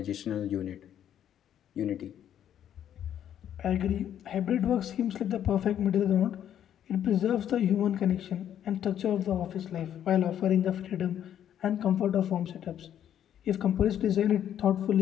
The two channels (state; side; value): quieter; right; 10.2 dB